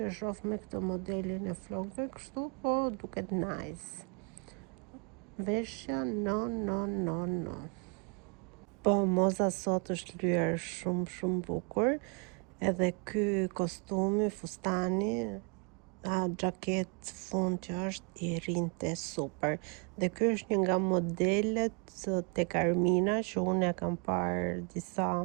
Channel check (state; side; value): quieter; left; 36.5 dB